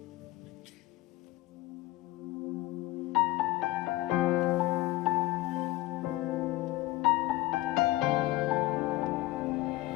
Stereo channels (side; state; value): right; quieter; 18.2 dB